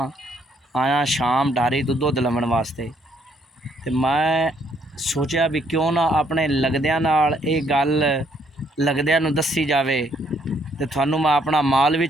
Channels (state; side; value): normal; both; correlation 0.69